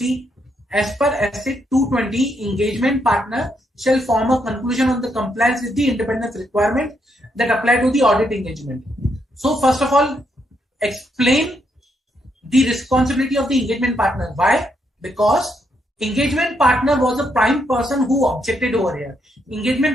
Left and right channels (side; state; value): both; normal; correlation 0.77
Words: as per SA 220, engagement partner shall form a conclusion on the compliance with the independence requirement that apply to the audit engagement. So first of all, explain the responsibility of the engagement partner. Why? Because engagement partner was a prime person who objected over here.